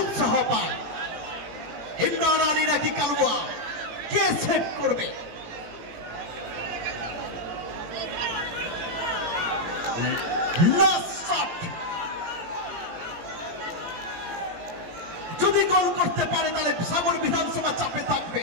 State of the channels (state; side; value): late; left; 18 ms